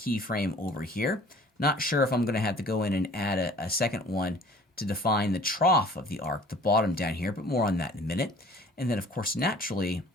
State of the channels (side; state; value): both; normal; correlation 0.50